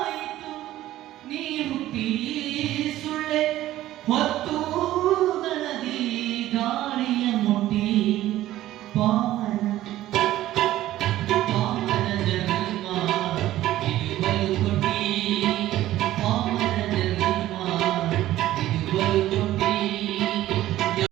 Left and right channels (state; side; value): quieter; left; 14.5 dB